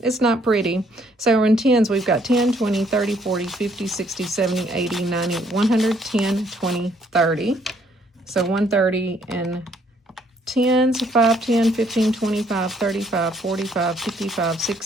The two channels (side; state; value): both; normal; correlation 0.66